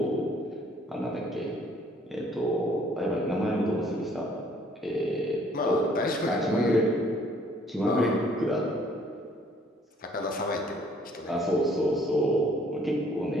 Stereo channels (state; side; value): normal; both; correlation 0.60